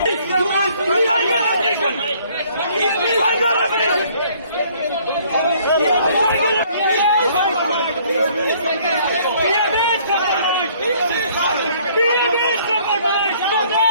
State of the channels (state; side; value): inverted; both; correlation -0.60